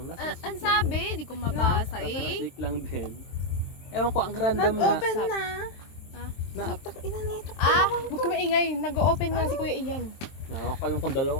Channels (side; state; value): right; late; 23 ms